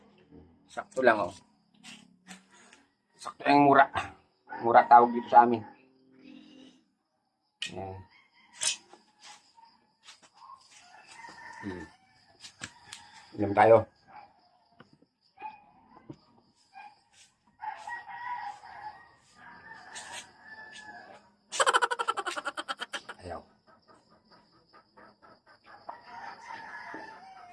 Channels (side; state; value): both; identical; correlation 1.00